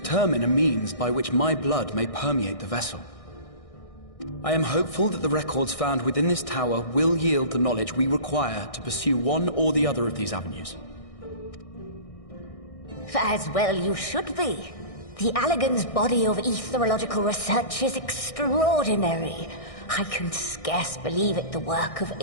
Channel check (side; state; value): right; late; 1.6 ms